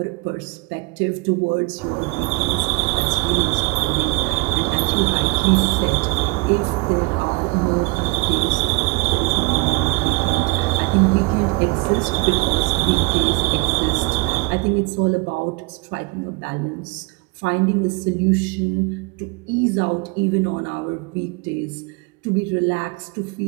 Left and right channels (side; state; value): left; quieter; 26.8 dB